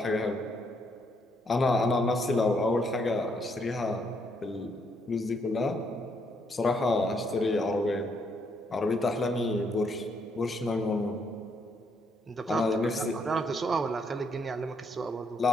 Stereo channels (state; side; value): normal; both; correlation 0.73